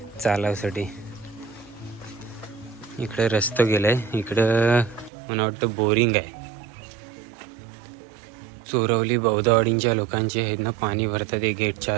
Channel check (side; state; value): left; drops out; at 5.1 s